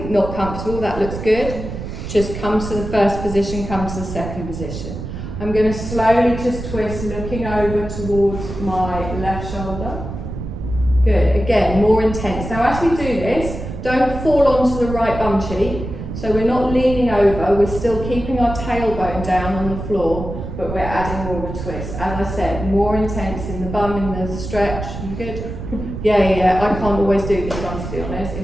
comfortable, that looks good. Just come to the first position. Come to the second position. I'm going to slowly just twist, looking over towards my left shoulder. Good. Again, more intense. Now, as we do this, don't fall onto the right bum cheek. So we're not leaning over, we're still keeping our tailbone down on the floor, but we're adding more of a twist. As I said, more intense in the bum, in the stretch. You good? Yeah. I can't always do this one, to be honest.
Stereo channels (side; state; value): right; noise; rumble, 8 dB below the sound